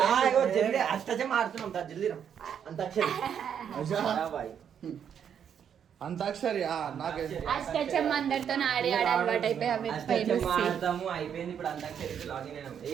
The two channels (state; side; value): quieter; left; 8.3 dB